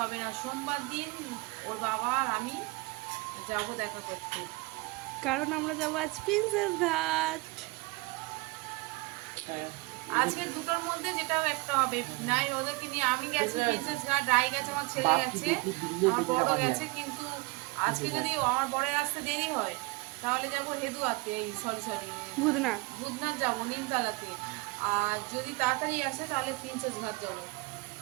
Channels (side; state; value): left; quieter; 24.7 dB